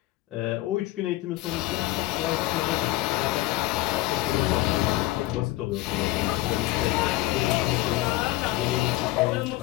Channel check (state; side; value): quieter; right; 17.7 dB